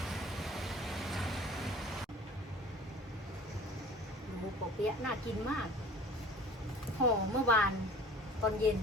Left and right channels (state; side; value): normal; both; correlation 0.45